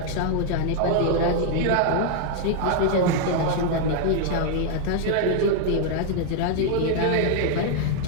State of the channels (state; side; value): different; both; correlation 0.00